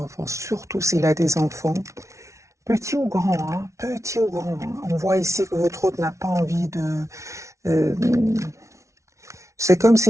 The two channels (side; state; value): left; late; 0.14 ms